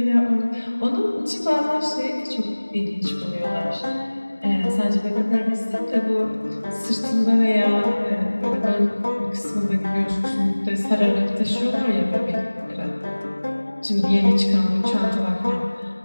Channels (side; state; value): both; inverted; correlation -1.00